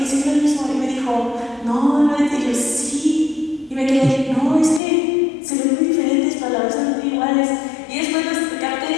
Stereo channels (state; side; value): drops out; right; at 4.8 s